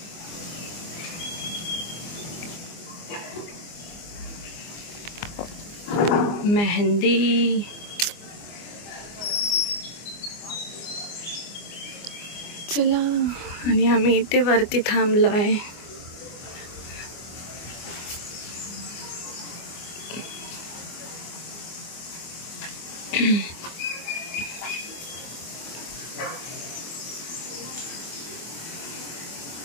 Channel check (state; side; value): late; right; 24 ms